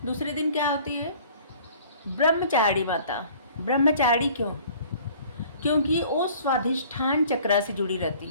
दूसरे दिन क्या होती है? ब्रह्मचारिणी माता। ब्रह्मचारिणी क्यों? क्योंकि वो स्वाधिष्ठान चक्रा से जुड़ी रहती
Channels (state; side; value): inverted; both; correlation -0.51